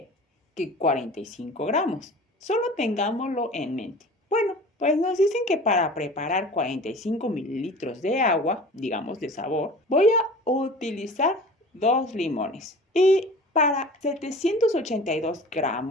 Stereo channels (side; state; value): both; normal; correlation 0.40